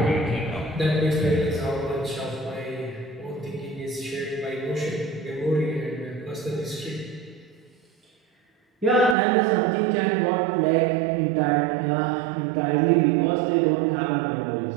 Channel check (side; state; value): left; drops out; at 9.2 s